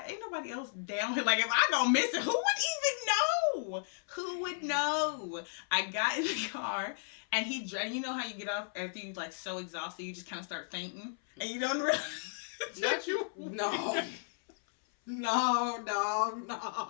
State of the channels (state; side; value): silent; right; 55 dB below the other